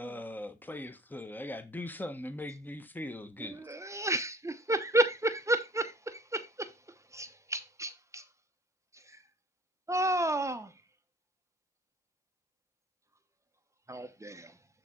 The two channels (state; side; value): normal; both; correlation 0.50